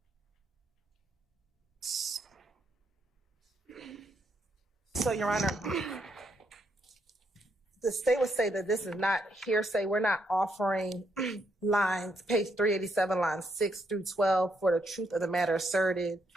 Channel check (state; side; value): normal; both; correlation 0.76